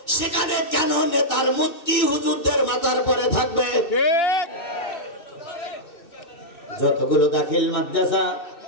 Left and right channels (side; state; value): right; late; 2.6 ms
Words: সেখানে কেন নেতার মূর্তি হুজুরদের মাথার পরে থাকবে? যতগুলো দাখিল মাদ্রাসা,